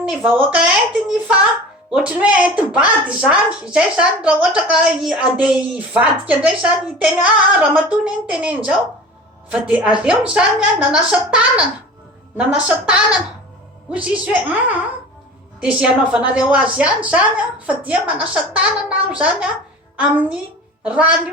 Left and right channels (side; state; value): both; normal; correlation 0.38